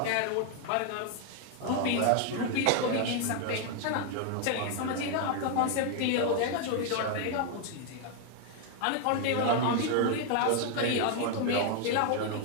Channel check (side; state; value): both; different; correlation 0.00